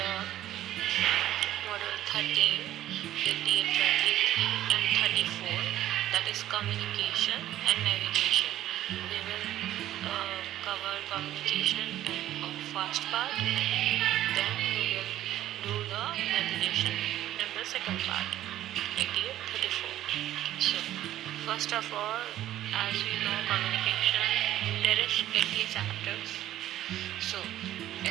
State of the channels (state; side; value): quieter; left; 13.2 dB